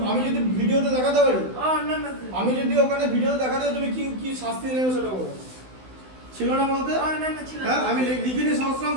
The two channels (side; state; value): left; late; 16 ms